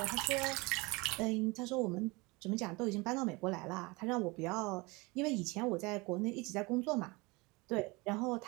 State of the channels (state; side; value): quieter; left; 25.2 dB